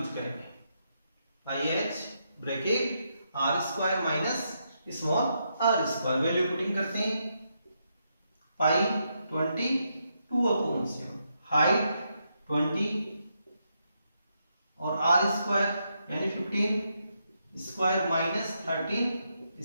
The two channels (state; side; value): inverted; both; correlation -0.80